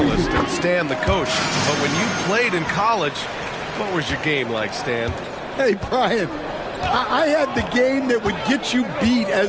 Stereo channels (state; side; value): identical; both; correlation 1.00